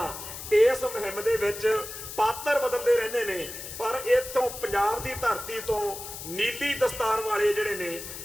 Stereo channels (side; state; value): left; noise; hiss, 10 dB below the sound